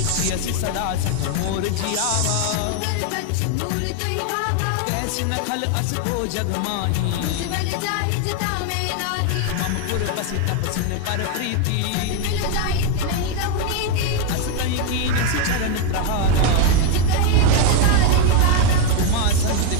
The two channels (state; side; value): different; both; correlation 0.01